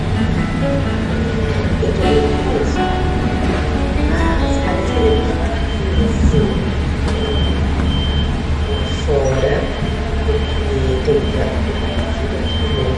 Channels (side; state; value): both; identical; correlation 1.00